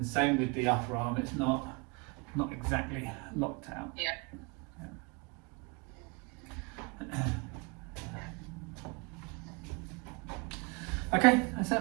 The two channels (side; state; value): left; quieter; 29.8 dB